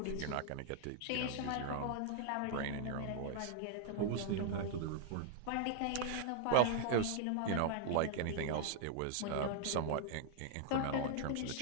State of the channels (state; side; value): different; both; correlation 0.00